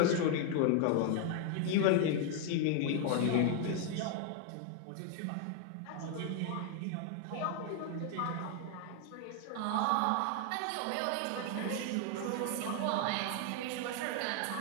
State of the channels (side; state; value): both; different; correlation 0.00